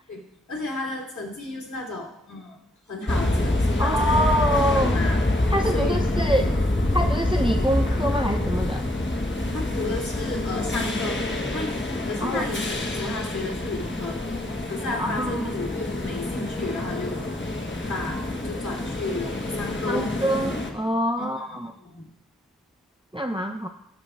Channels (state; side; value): normal; both; correlation 0.72